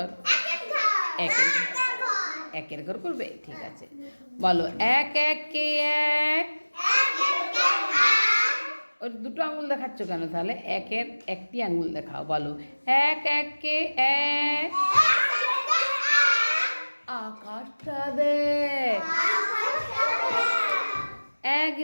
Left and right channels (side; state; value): both; inverted; correlation -1.00